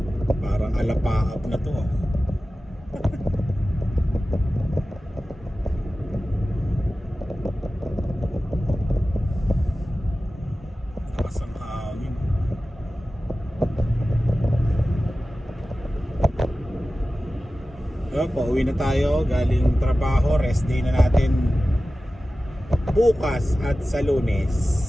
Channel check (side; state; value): both; normal; correlation 0.95